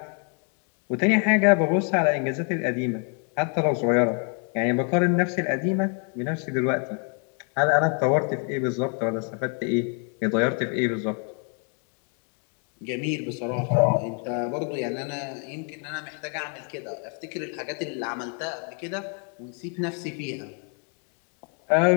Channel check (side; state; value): right; quieter; 39.0 dB